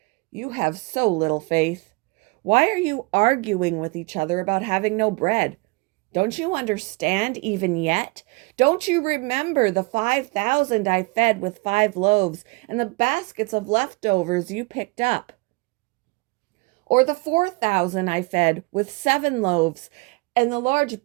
"You have so little faith. Why are you arguing with each other about having no bread? Don't you understand even yet? Don't you remember the 5,000 I fed with 5 loaves and the baskets of leftovers you picked up? Or the 4,000 I fed with 7 loaves and the large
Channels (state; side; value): quieter; left; 26.4 dB